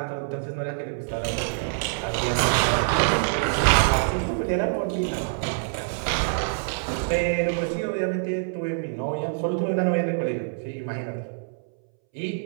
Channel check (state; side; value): silent; left; 61 dB below the other